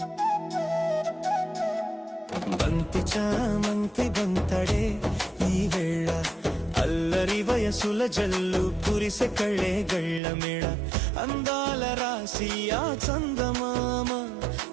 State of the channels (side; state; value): left; drops out; at 10.2 s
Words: బంతి చామంతి బంతడే ఈ వేళ అల్లరి వయసుల జల్లు కురిసె కళ్ళే గళ్ళ మేళ అందాల రాసి ఆ చందమామ